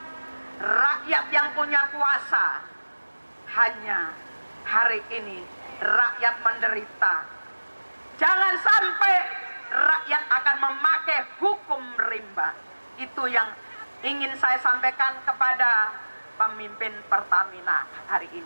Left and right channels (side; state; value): both; inverted; correlation -1.00